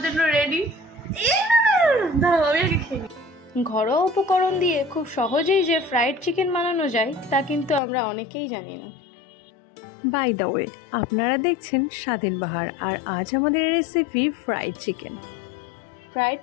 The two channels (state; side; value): drops out; right; at 7.8 s